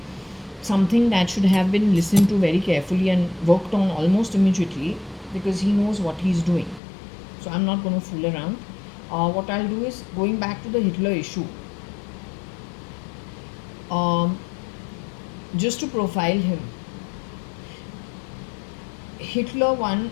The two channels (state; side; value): drops out; right; at 6.8 s